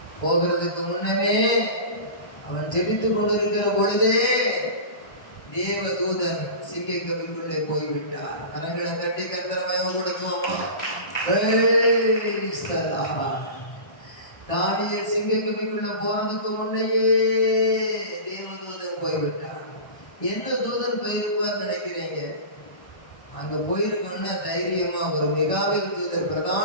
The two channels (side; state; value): right; late; 1.3 ms